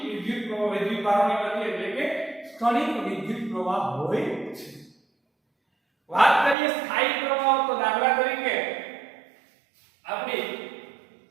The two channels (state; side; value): drops out; left; at 6.6 s